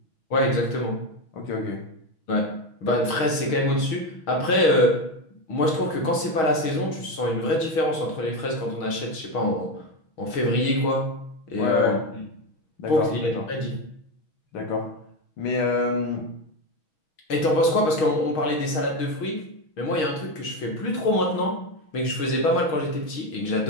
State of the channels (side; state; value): right; late; 6.4 ms